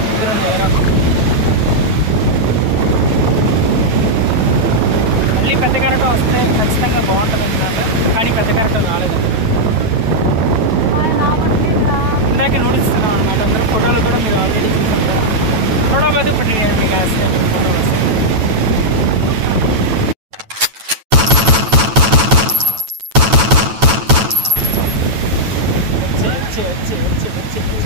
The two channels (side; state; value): left; late; 9.1 ms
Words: ఇద్దరు నేరం. మళ్ళీ పెద్ద కరెంట్ వస్తే ఖచ్చితంగా బాగుంటుంది అన్నమాట. కానీ పెద్ద కరెంట్ రాలేదు. ఇందాక నూడిస్తున్నాం అనమాట. అందరూ ఫోటోలు కూడా మీరు ఆల్రెడీ చూసారు కదా. थोड़ा बहुत पटेगा निकास फोटो बस अच्छे अच्छे अच्छे अच्छे